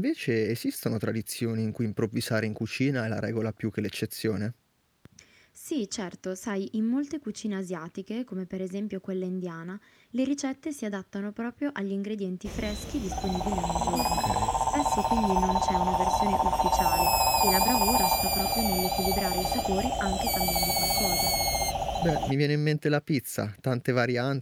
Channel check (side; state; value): both; identical; correlation 1.00